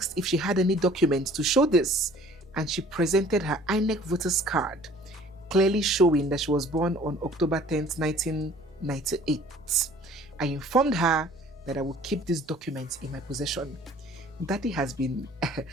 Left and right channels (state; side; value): noise; right; rumble, 29 dB below the sound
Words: if she had any documents to show this, and she presented her INEC voter's card clearly showing that she was born on October 10th, 1998. I informed her that I would keep these documents in my possession. Daddy has been